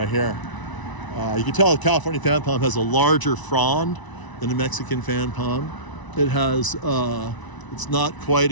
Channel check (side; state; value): right; late; 1.0 ms